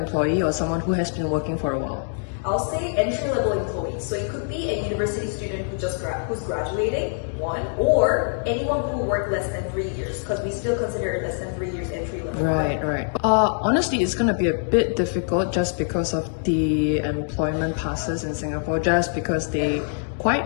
or someone who has been working for a while? I'll say entry-level employee. So it could be a university student who's graduating, one, or anyone who worked less than 3 years, because we still consider less than 3 years entry-level. Right. Honestly, it's going to be a bit difficult just because of the employment passes in Singapore, just because they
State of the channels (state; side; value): silent; right; digital silence